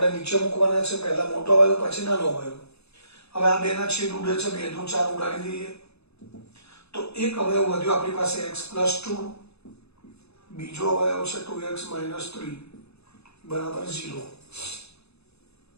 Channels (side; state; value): right; late; 0.79 ms